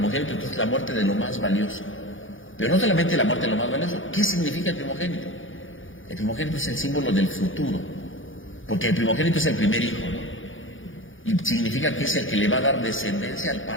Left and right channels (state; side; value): late; right; 0.57 ms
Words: entonces la muerte de lo más valioso. Pero no solamente la muerte de lo más valioso. ¿Qué significa el primogénito? El primogénito es el símbolo del futuro. Porque el primogénito es el primer hijo, ¿no? Y significa que es el que le va a dar descendencia al